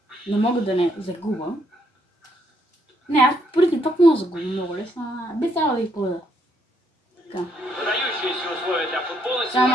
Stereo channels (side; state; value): both; normal; correlation 0.72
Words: Не мога да не загуба. Не, аз преди пък мога да загубя много лесно. Би трябвало да ги поведа. Така. Сега